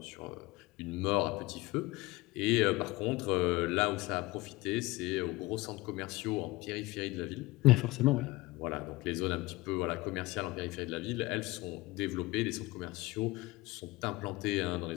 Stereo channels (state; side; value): quieter; right; 21.0 dB